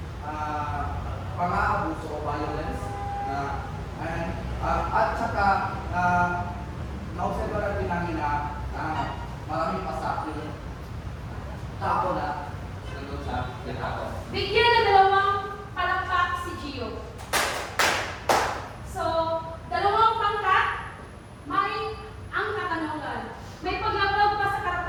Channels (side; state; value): both; identical; correlation 1.00